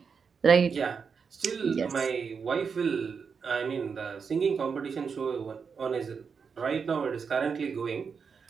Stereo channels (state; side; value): quieter; left; 5.9 dB